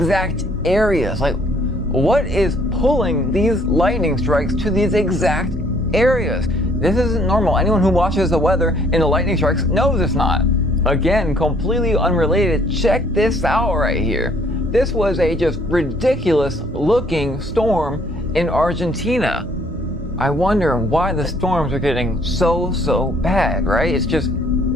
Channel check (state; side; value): normal; both; correlation 0.62